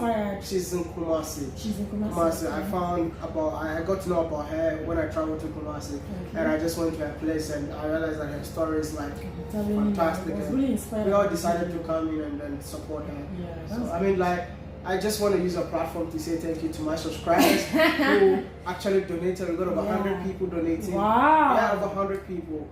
She's in Kumasi. She's in Kumasi. I got to know about her when I traveled to Kumasi, and I just went to her place and I realized that her story is like fantastic. It was really inspiring. We all decided to come in and then support her. Yeah, so I mean, like, I just want to use a platform to say thank you to my subscribers who actually donated. We got over 100 people donating. Wow. Yeah, over 100 people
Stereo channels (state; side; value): identical; both; correlation 1.00